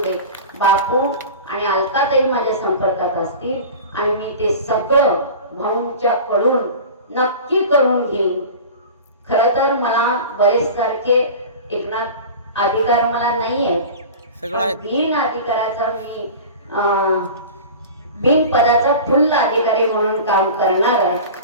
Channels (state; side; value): inverted; both; correlation -0.35